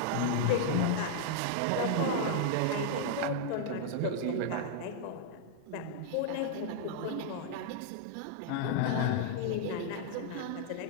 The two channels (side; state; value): both; different; correlation -0.01